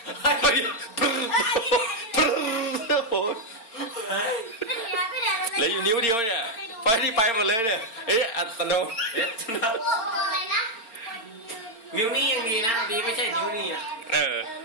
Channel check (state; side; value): late; right; 4.4 ms